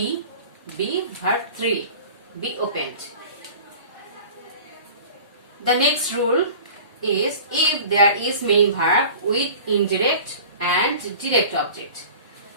verb 3, be opened. The next rule is if there is main verb with indirect and direct object.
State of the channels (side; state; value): both; inverted; correlation -0.41